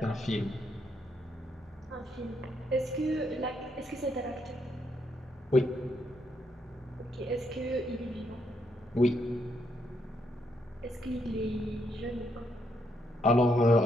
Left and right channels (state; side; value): normal; both; correlation 0.76